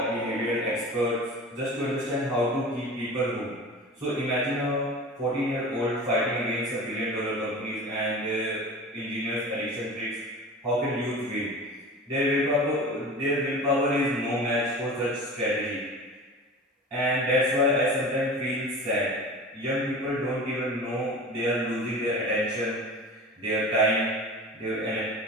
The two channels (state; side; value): normal; both; correlation 0.35